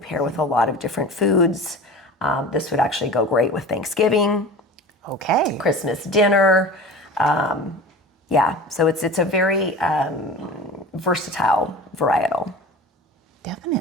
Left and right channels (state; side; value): normal; both; correlation 0.36